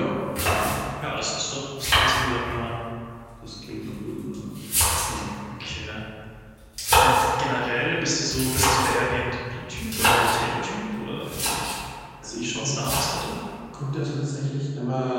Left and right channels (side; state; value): both; identical; correlation 1.00